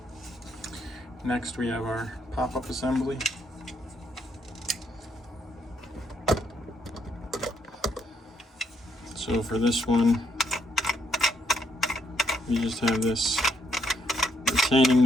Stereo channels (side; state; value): both; normal; correlation 0.74